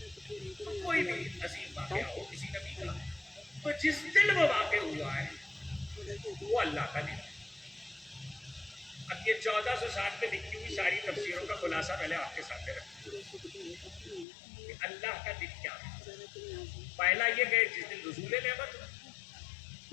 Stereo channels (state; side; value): drops out; right; at 14.2 s